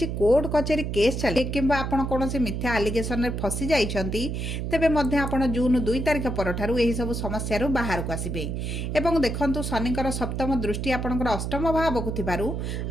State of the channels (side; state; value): right; noise; hum, 3 dB below the sound